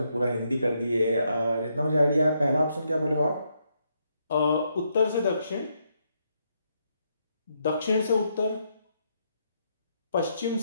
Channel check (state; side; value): inverted; both; correlation -0.77